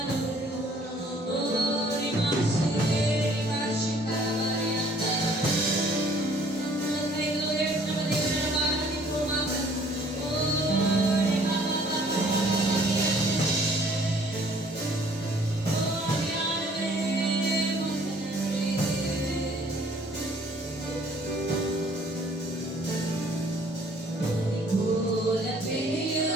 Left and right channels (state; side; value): normal; both; correlation 0.58